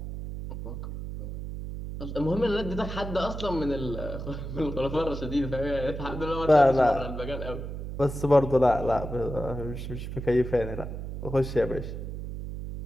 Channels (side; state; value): right; noise; hum, 7 dB below the sound